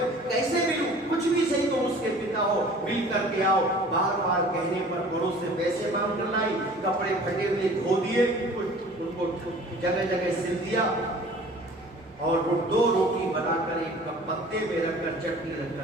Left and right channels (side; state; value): both; normal; correlation 0.47